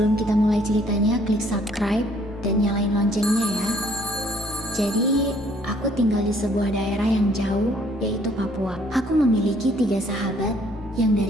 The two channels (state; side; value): normal; both; correlation 0.62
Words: kita mulai ceritanya, klik subscribe dan nyalain loncengnya ya. Jadi, aku tinggal di sebuah daerah yang jauh, yaitu Papua. Aku memiliki 3 sahabat yang